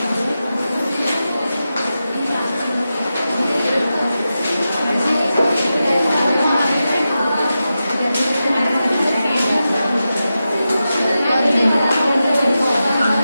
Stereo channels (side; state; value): both; inverted; correlation -0.91